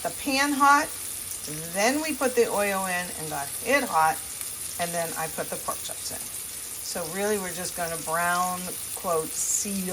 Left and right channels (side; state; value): both; identical; correlation 1.00